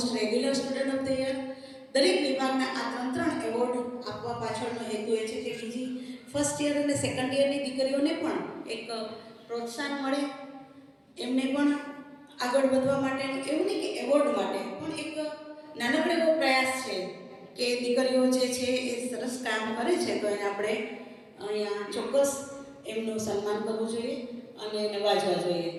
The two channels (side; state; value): both; identical; correlation 1.00